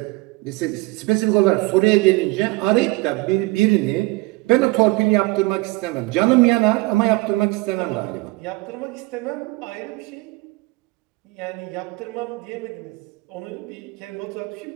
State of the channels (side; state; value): left; quieter; 23.1 dB